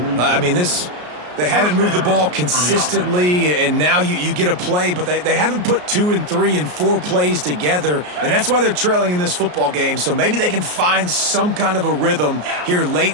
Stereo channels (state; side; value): late; left; 33 ms